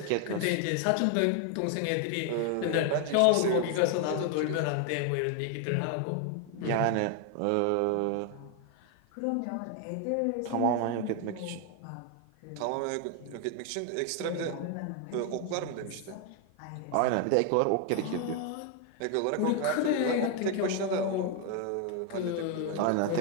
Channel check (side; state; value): both; different; correlation 0.01